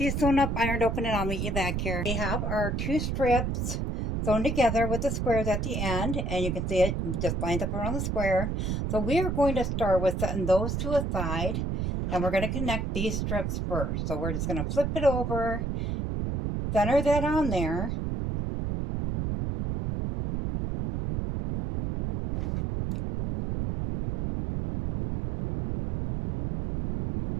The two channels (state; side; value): noise; right; rumble, 1 dB below the sound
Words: sewn up, ironed open, and I'll meet you back here. We have our two strips sewn together with the squares at the end, and you can see it just lines up around the square. So we are going to start with setting those to a side, and we're going to connect these strips first. So we're just going to flip it over, center that on there.